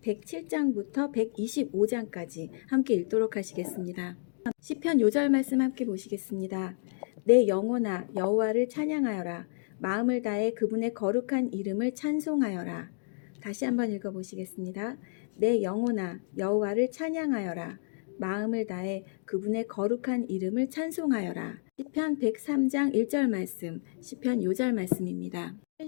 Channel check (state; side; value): silent; right; digital silence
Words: 107장부터 125장까지 함께 읽도록 하시겠습니다. 시편 요절 말씀 함께 보시겠습니다. 내 영혼아 여호와를 찬양하여라. 마음을 다해 그분의 거룩한 이름을 찬송하여라. 다시 한번 읽어보시겠습니다. 내 영혼아 여호와를 찬양하여라. 마음을 다해 그분의 거룩한 이름을 찬송하여라. 시편 103장 1절 말씀, 시편 요절 말씀입니다.